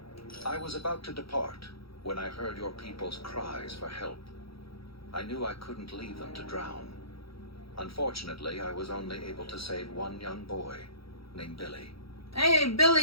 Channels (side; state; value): right; late; 0.75 ms